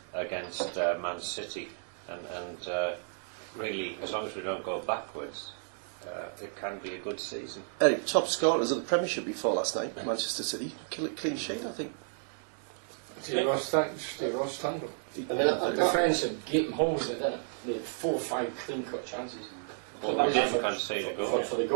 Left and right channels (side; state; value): left; silent; digital silence